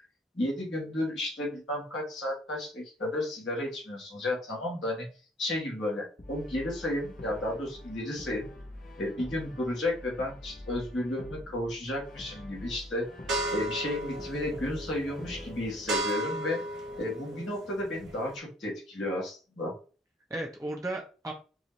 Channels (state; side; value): normal; both; correlation 0.58